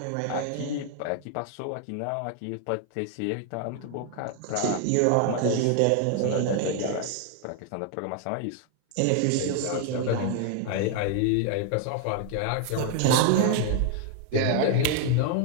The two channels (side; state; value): both; different; correlation 0.00